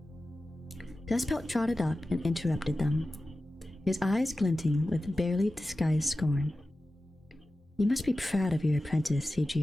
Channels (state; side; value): normal; both; correlation 0.94